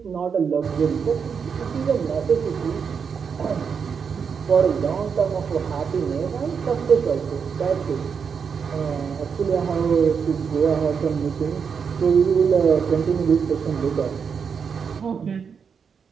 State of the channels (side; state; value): left; quieter; 6.4 dB